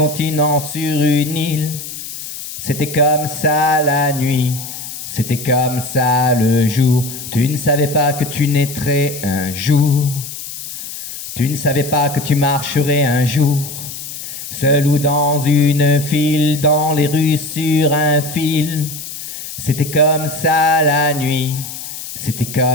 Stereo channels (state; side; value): noise; left; hiss, 10 dB below the sound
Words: sur une île. C'était comme ça la nuit, c'était comme ça le jour. Tu ne savais pas que tu naîtrais un jour. Tu ne savais pas que tu marcherais un jour, seul ou dans une file, dans les rues sur un fil. C'était comme ça la nuit, c'était